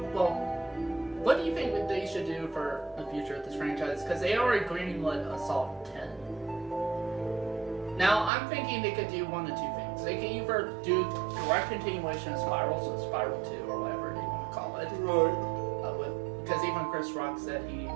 what do you think that they should do for the future of this franchise? Because they already greenlit Assault 10. Now I'm thinking they could do one of two things. They could either do direct continuation of Spiral, so Spiral 2 or whatever they want to call it. Right. Because even Chris Rock said he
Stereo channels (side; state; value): left; drops out; at 8.3 s